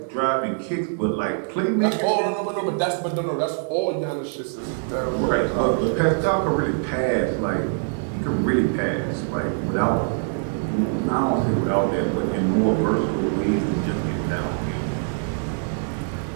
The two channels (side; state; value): left; silent; 63 dB below the other